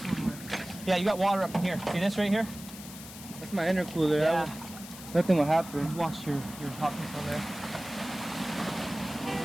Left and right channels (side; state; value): left; noise; hiss, 14 dB below the sound